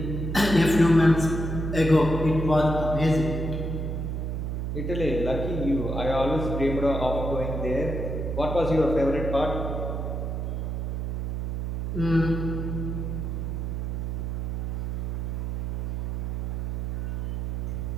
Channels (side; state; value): right; noise; hum, 2 dB below the sound